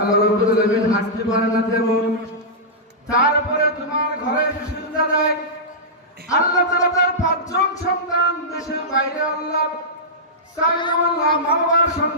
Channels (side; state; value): both; normal; correlation -0.13